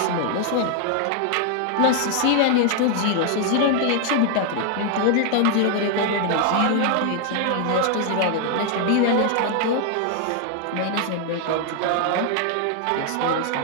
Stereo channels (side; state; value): both; different; correlation 0.00